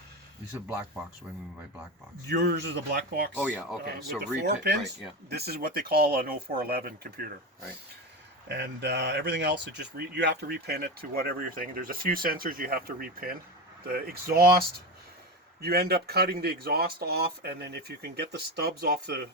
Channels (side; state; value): both; normal; correlation 0.20